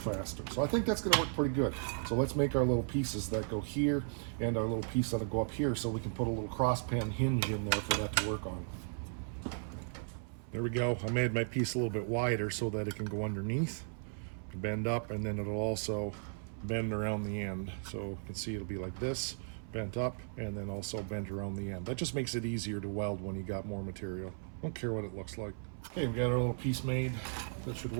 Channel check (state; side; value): silent; left; 54 dB below the other